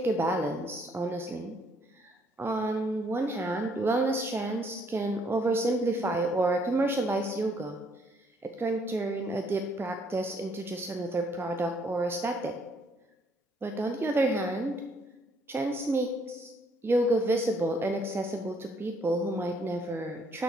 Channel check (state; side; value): normal; both; correlation 0.67